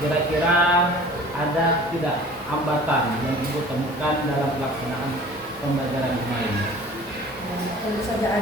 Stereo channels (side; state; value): both; normal; correlation 0.45